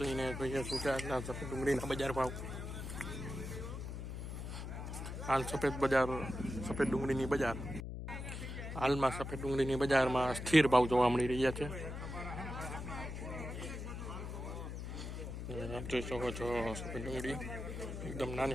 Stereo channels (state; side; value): noise; left; hum, 6 dB below the sound